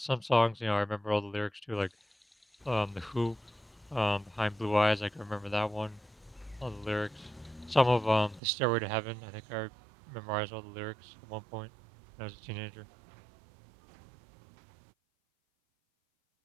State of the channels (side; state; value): left; drops out; at 8.4 s